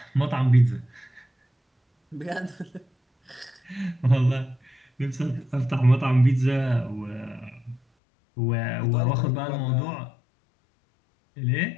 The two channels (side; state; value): right; drops out; at 7.8 s